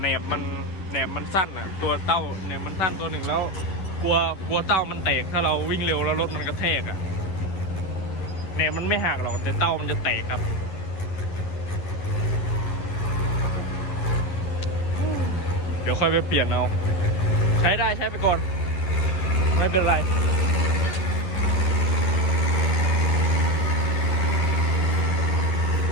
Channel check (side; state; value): right; late; 11 ms